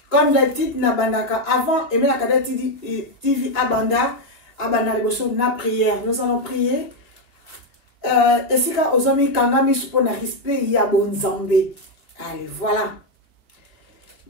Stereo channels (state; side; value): late; right; 2.0 ms